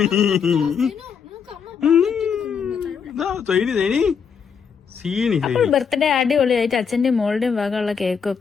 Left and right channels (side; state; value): right; quieter; 6.6 dB